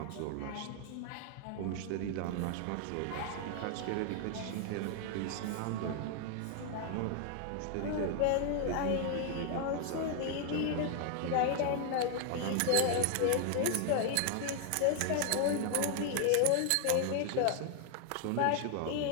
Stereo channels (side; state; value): both; different; correlation 0.00